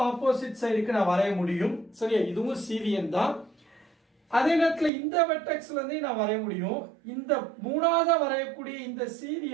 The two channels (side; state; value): left; drops out; at 4.9 s